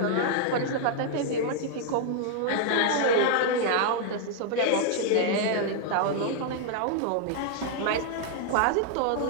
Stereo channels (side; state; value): both; different; correlation -0.01